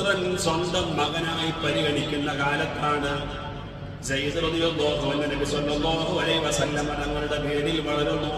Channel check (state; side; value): identical; both; correlation 1.00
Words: സ്വന്തം മകനായി പരിഗണിക്കുന്ന കാലത്താണ് സയ്യിദ് റളിയല്ലാഹു അൻഹു നബി സ്വല്ലല്ലാഹു അലൈഹി വസല്ലം തങ്ങളുടെ പേരിൽ വളരുന്നു.